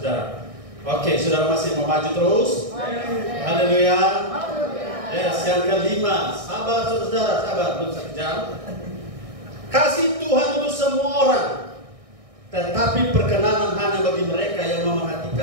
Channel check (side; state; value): left; late; 1.6 ms